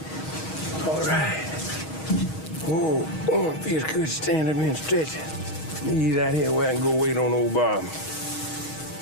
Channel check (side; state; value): right; late; 6.3 ms